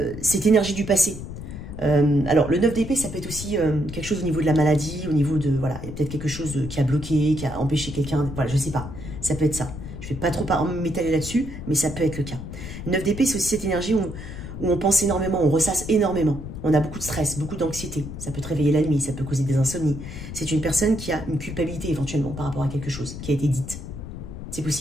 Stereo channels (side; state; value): left; noise; rumble, 9 dB below the sound